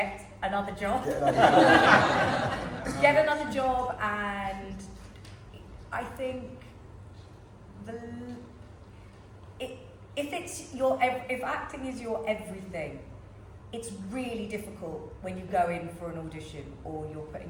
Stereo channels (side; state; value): both; identical; correlation 1.00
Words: another job. Get another job, and I think if acting is your everything, it's really difficult when you go in for an audition or you're